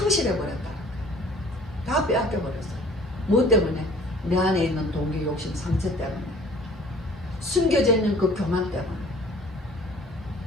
다 빼앗겨버렸어요. 뭐 때문에? 내 안에 있는 동기, 욕심, 상처 때문에. 숨겨져 있는 그 교만 때문에.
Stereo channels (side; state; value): both; normal; correlation 0.51